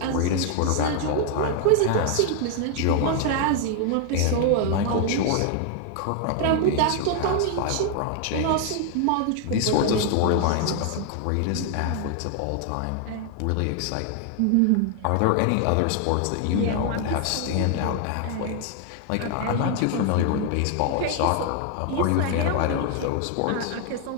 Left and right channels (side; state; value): both; different; correlation 0.00